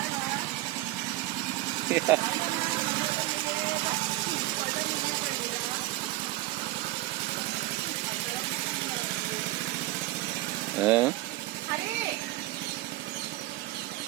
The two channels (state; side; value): quieter; left; 17.9 dB